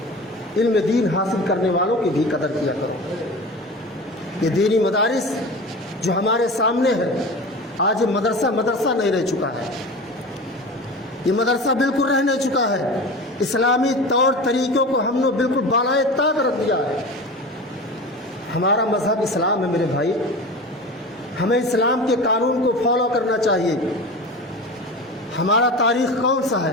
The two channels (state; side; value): normal; both; correlation 0.32